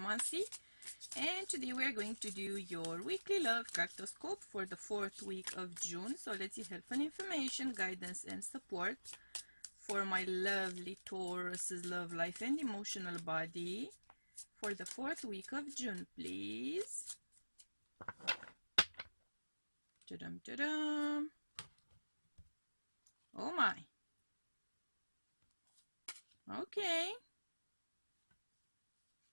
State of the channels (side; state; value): both; inverted; correlation -1.00